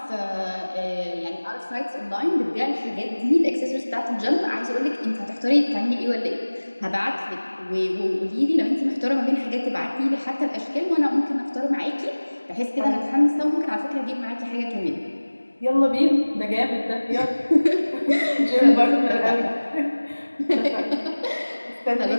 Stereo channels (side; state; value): both; inverted; correlation -1.00